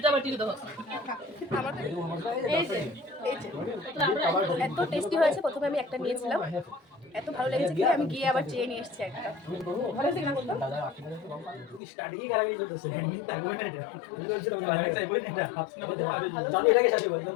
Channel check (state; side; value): drops out; right; at 11.8 s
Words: এত টেস্টি হয়েছে, প্রথমে আমি একটা নিয়েছিলাম, এত ভালো লেগেছে কি আমি গিয়ে আবার চেয়ে নিয়ে এসেছি একটা। ভালো হয়েছে কিনা বলতো?